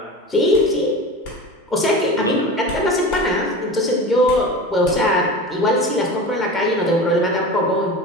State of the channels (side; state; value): both; normal; correlation 0.32